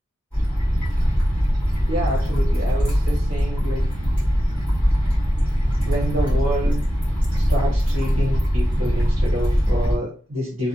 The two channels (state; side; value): normal; both; correlation 0.92